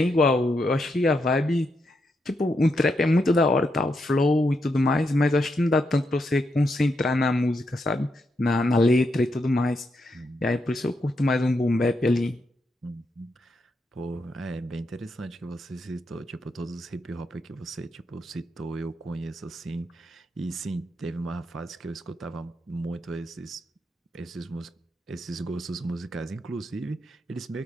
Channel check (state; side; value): normal; both; correlation 0.82